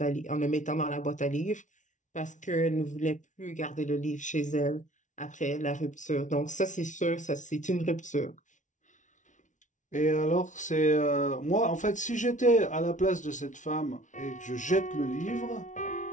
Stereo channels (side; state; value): right; late; 0.37 ms